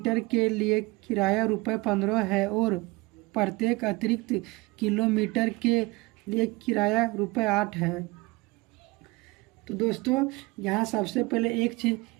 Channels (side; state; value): left; quieter; 23.5 dB